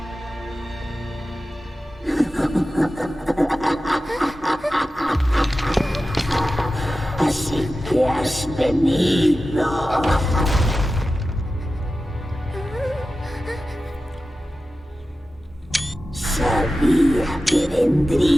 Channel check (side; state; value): both; normal; correlation 0.94